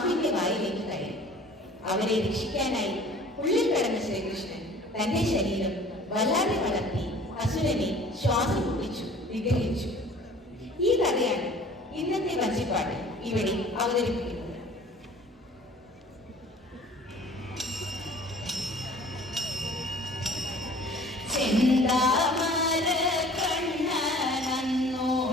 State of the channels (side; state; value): both; normal; correlation 0.48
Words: വായിലേക്ക് കയറി. അവരെ രക്ഷിക്കാനായി ഉള്ളിൽ കടന്ന ശ്രീകൃഷ്ണൻ തന്റെ ശരീരം വല്ലാതെ വളർത്തി അസുരനെ ശ്വാസം മുട്ടിച്ചു നിഗ്രഹിച്ചു. ഈ കഥയാണ് ഇന്നത്തെ വഞ്ചിപ്പാട്ട് ഇവിടെ അവതരിപ്പിക്കുന്നത്. ചെന്താമര കണ്ണനന്നോ